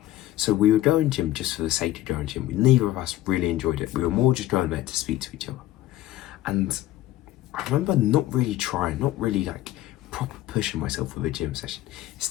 So we were going gym just for the sake of going gym. Neither of us really enjoyed it. We were more just going there to speak to each other. And I remember not really trying, not really like proper pushing myself with a gym session.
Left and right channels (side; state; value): right; quieter; 14.5 dB